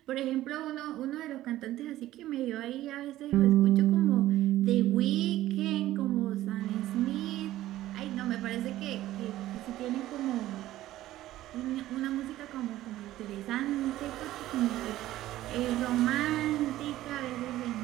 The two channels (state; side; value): quieter; left; 14.8 dB